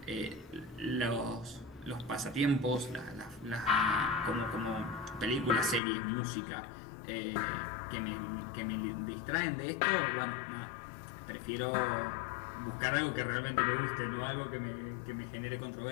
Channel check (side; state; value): right; drops out; at 5.8 s